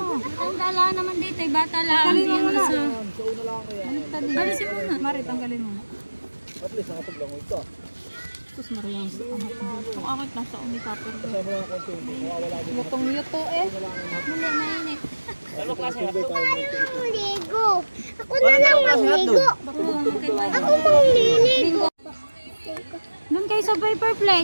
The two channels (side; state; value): both; inverted; correlation -1.00